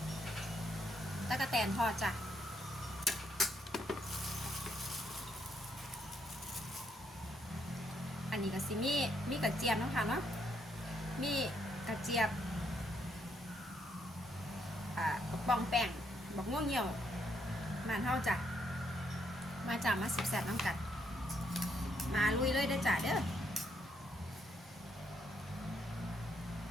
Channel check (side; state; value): both; normal; correlation 0.75